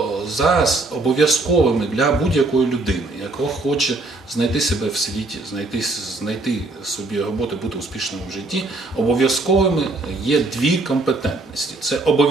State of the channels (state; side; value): quieter; left; 3.1 dB